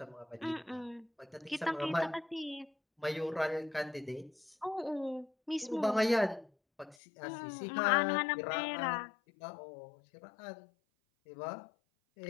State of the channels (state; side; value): drops out; right; at 7.0 s